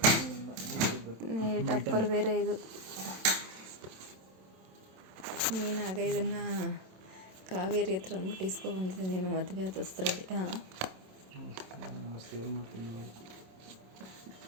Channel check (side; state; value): left; late; 27 ms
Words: ಟಪ್ಪರ್ ಬೇರೆ ಇದು. ನೀನಾಗ ಇದನ್ನು ಕಾವೇರಿ ಹತ್ರ ಅಂದ್ಬಿಟ್ಟು ಇಸ್ಕೊಬಂದಿದ್ದೆ ನೀನು ಮದುವೆ ಆದ ಹೊಸ್ತ್ರಲ್ಲಿ.